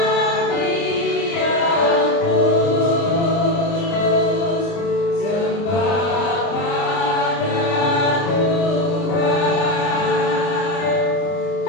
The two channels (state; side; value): late; right; 29 ms